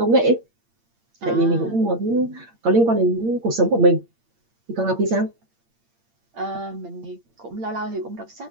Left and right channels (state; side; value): late; left; 8.7 ms